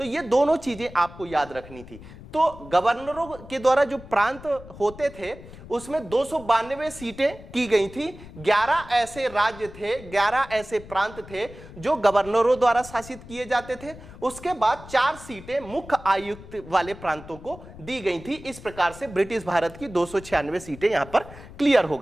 ये दोनों चीजें आपको याद रखनी थी। तो गवर्नरों के द्वारा जो प्रांत होते थे उसमें 292 सीटें की गई थी। 11 ऐसे राज्य थे, 11 ऐसे प्रांत थे जो गवर्नरों द्वारा शासित किए जाते थे। उसके बाद 4 सीटें मुख्य आयुक्त वाले प्रांतों को दी गई थी। इस प्रकार से ब्रिटिश भारत की 296 सीटें यहां पर क्लियर हो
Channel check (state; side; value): noise; left; rumble, 17 dB below the sound